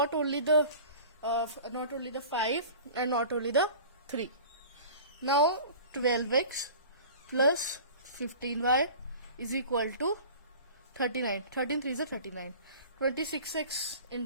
only the 5 and not only the 3. Now 12x plus 15y is equal to 39. 13 3s are 39. 26x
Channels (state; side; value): inverted; both; correlation -0.41